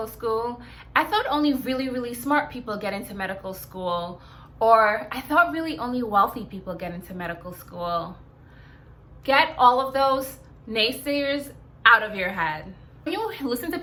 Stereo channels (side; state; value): both; identical; correlation 1.00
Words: school? I thought only really, really smart people get into medical school. Or I thought really only wealthy people get into medical school. Get all of those naysayers out of your head. When you listen to